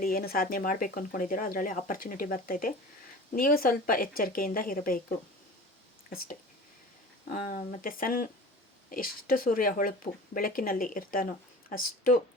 ಏನು ಸಾಧನೆ ಮಾಡಬೇಕು ಅಂದ್ಕೊಂಡಿದ್ದೀರೋ ಅದರಲ್ಲಿ ಆಪರ್ಚುನಿಟಿ ಬರ್ತೈತೆ. ನೀವು ಸ್ವಲ್ಪ ಎಚ್ಚರಿಕೆಯಿಂದ ಇರಬೇಕು ಅಷ್ಟೇ. ಮತ್ತು ಎಷ್ಟು ಸೂರ್ಯ ಹೊಳಪು ಬೆಳಕಿನಲ್ಲಿ ಇರ್ತಾನೋ ಅಷ್ಟು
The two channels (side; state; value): both; normal; correlation 0.38